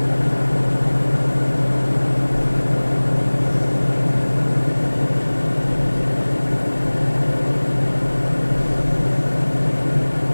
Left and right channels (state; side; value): inverted; both; correlation -1.00